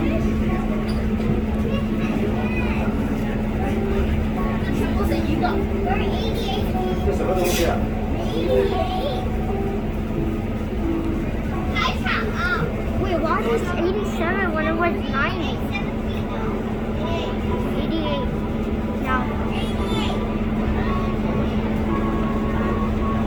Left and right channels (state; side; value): identical; both; correlation 1.00